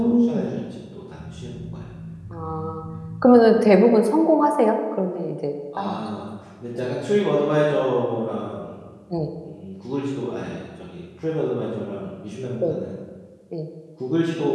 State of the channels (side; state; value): both; identical; correlation 1.00